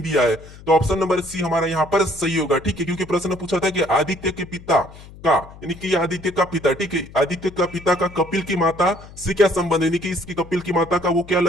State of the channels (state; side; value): noise; left; hum, 18 dB below the sound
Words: दिया है, तो ऑप्शन नंबर सी हमारा यहाँ पर सही होगा, ठीक है। क्योंकि प्रश्न पूछा था कि आदित्य के पिता का, यानी कि आदित्य का पिता, ठीक है, आदित्य का पिता का कपिल की माता से क्या संबंध है, यानी कि इसकी कपिल की माता का वो क्या